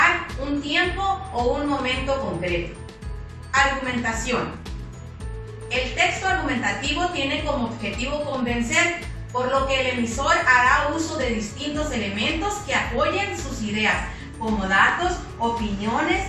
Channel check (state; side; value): identical; both; correlation 1.00